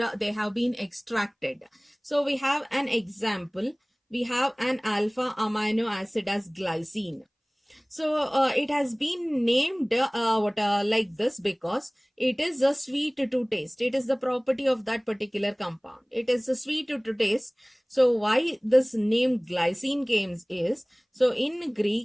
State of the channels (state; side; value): identical; both; correlation 1.00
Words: they have been extracted. So we have an example. We have an alpha amino acid as glycine. So it has been named like this because it is a sweet to taste. It is the property of that particular compound. It is a sweet to taste. So why this name glycine came is, so in